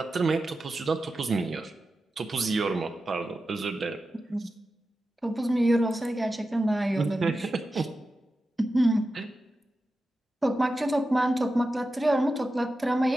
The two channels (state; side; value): normal; both; correlation 0.92